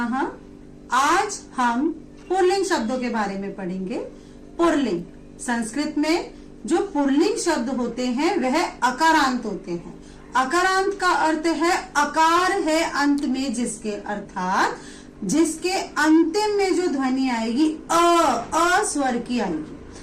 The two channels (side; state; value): both; identical; correlation 1.00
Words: आज हम पुल्लिंग शब्दों के बारे में पढ़ेंगे। पुल्लिंग संस्कृत में जो पुल्लिंग शब्द होते हैं वह अकारांत होते हैं। अकारांत का अर्थ है अकार है अंत में जिसके, अर्थात जिसके अंतिम में जो ध्वनि आएगी अ स्वर की आएगी।